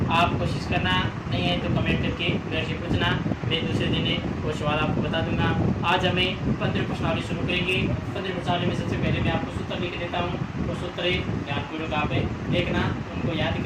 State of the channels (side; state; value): both; identical; correlation 1.00